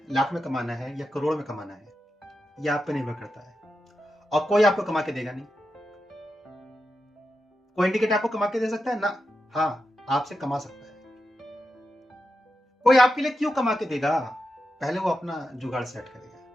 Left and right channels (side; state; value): both; normal; correlation 0.88